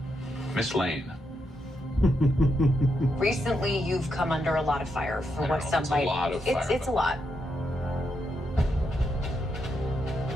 Miss Lane. Recently, you've come under a lot of fire for what some it's might. A lot of fire, it's a lot.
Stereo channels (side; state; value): both; normal; correlation 0.82